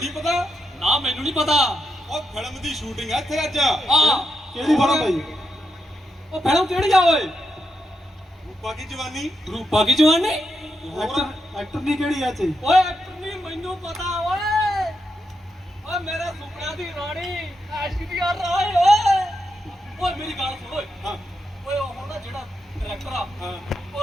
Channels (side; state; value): both; normal; correlation 0.84